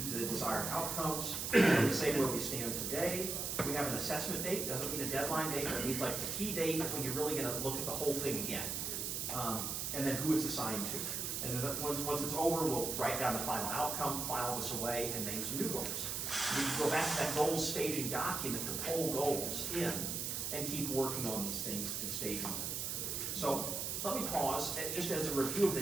the desired outcomes. We say where we stand today. We have an assessment date. Doesn't mean a deadline date, but it means like the key date when you're really going to look at the whole thing again. And then who it's assigned to. And then once it's over, we'll write down the final outcome, file this away, and name some new goals. We can go back to that goals staging document to pull goals in and keep working on these things and staging them. So let me pause, just as a review of the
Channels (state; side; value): noise; right; hiss, 2 dB below the sound